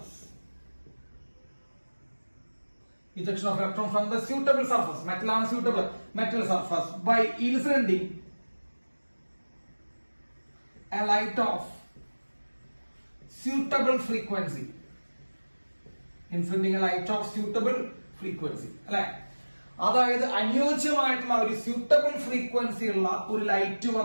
Ejection of electron from the suitable surface. Metal on suitable metal surface by inciding a light of suitable frequency. Inciding a light of suitable frequency. അല്ലെ? അതായത് അനുയോജ്യമായിട്ടുള്ള ഒരു suitable frequency ഉള്ള ഒരു light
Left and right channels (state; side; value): inverted; both; correlation -1.00